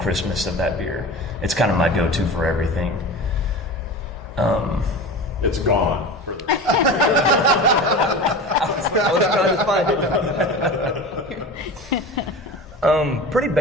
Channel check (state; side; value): normal; both; correlation 0.32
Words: of that beer. It's kind of my go-to for everything. it's gone. For the I was trying to find it. Pretty